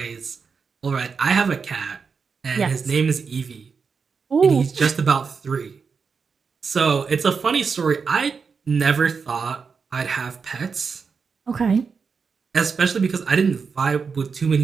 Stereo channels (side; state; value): left; quieter; 5.5 dB